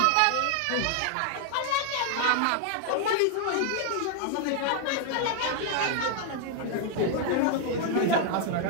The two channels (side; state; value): both; different; correlation 0.00